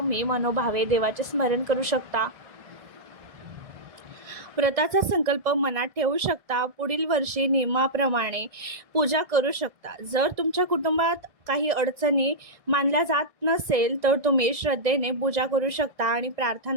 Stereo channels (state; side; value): late; left; 1.6 ms